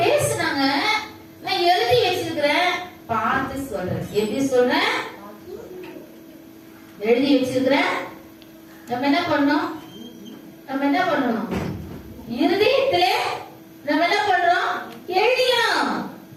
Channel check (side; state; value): both; identical; correlation 1.00